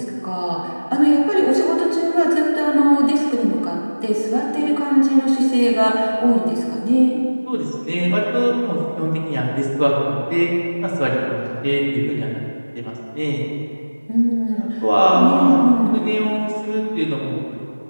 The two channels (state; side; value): inverted; both; correlation -1.00